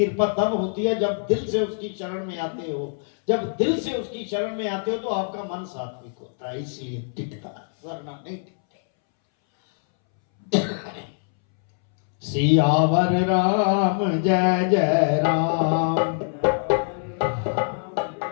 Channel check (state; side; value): silent; right; 63 dB below the other